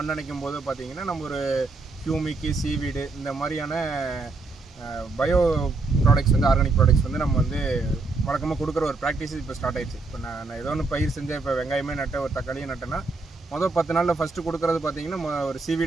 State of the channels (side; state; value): left; quieter; 3.6 dB